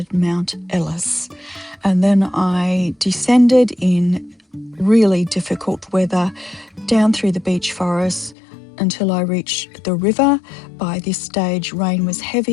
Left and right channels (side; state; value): right; drops out; at 8.3 s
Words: Mount Ellis. And then I descended in really difficult weather down through the beech forest until I reached the river. By this stage, rain was